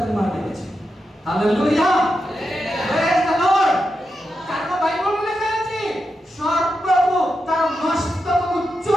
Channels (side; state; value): both; normal; correlation 0.87